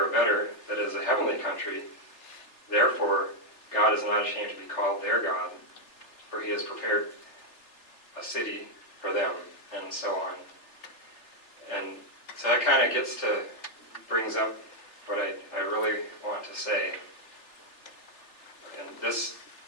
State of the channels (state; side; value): late; right; 3.4 ms